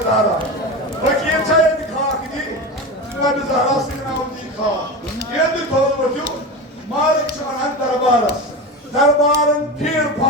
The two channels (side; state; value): both; normal; correlation 0.24